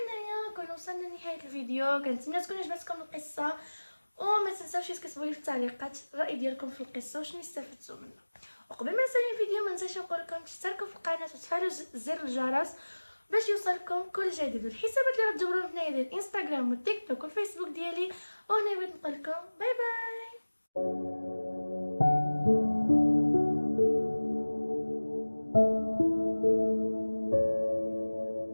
كنا وصلنا لنهايه الفيديو. كنتمنى تكون عجبتكم القصه، وما تنساوش تكتبوا لي في التعليقات الراي ديالكم في القصه وشنو استفدتوا منها. وقبل ما نسالي الفيديو ما ننساش نقول لكم تشتركوا في القناه وتفعلوا زر الجرس باش يوصلكم كل جديد. الحسابات اللي غتجبروا هنايا ديال الانستغرام والتيك توك والفيسبوك ديالي. وهنا بغيت نقول لكم باي باي.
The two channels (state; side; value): inverted; both; correlation -1.00